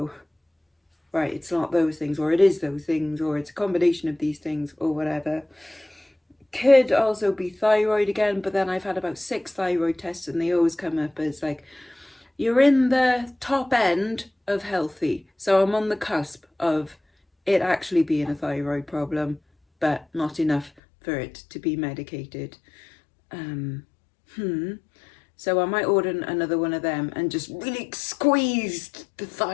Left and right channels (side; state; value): right; drops out; at 20.7 s